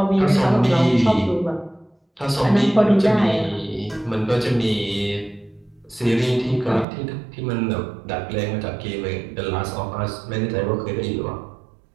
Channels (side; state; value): left; drops out; at 6.9 s